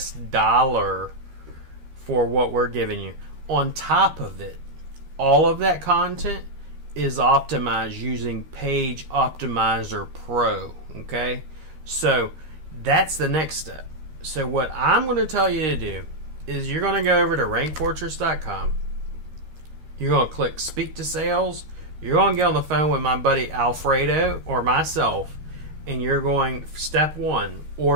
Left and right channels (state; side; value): late; left; 13 ms